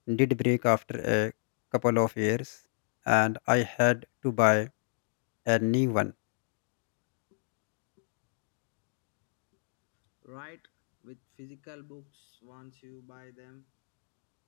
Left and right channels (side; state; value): right; silent; digital silence